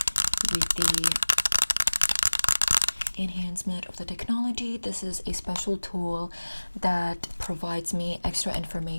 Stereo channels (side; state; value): both; inverted; correlation -1.00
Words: with the enhancement of the technology, this is a special tool that provides me extra